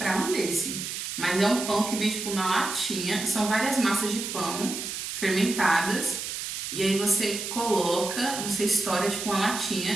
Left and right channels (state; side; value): noise; right; hiss, 5 dB below the sound